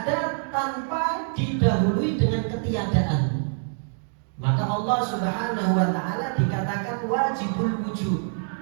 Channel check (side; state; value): left; silent; 61 dB below the other